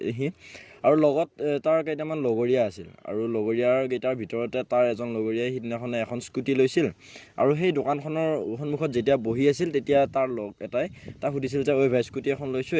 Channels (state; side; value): identical; both; correlation 1.00